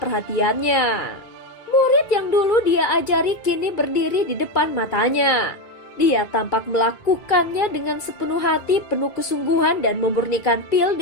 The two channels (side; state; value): right; late; 2.3 ms